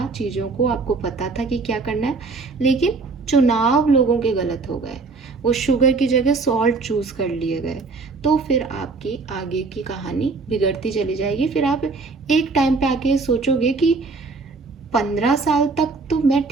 चीज़ों को, आपको पता था कि क्या करना है, लेकिन चुनाव लोगों के गलत हो गए, वो शुगर की जगह सॉल्ट चूज कर लिए गए, तो फिर आपकी आगे की कहानी बिगड़ती चली जाएगी। फिर आप एक टाइम पे आके सोचोगे कि 15 साल तक तो मैं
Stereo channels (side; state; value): left; quieter; 4.1 dB